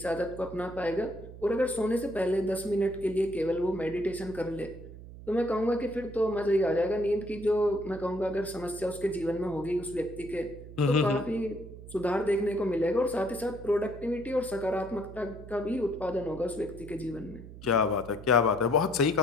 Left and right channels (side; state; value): right; noise; hum, 15 dB below the sound